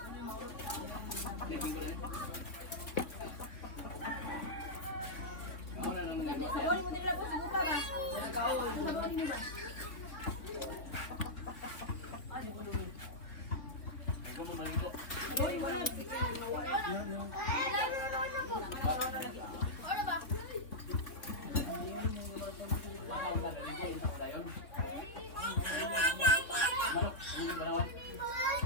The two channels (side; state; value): right; late; 3.8 ms